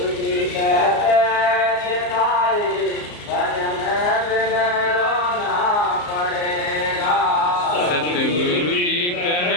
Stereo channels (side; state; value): right; late; 34 ms